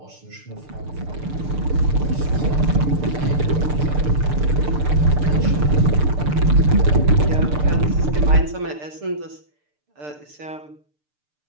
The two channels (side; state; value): left; late; 6.7 ms